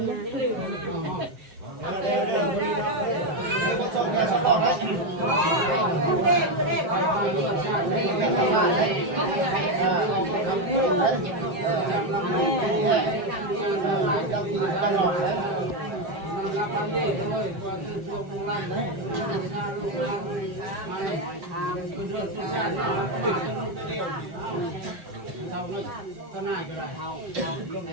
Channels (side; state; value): left; late; 7.6 ms